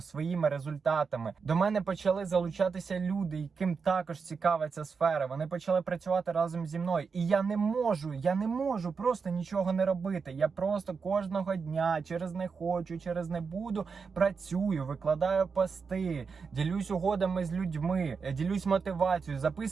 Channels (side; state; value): left; quieter; 5.3 dB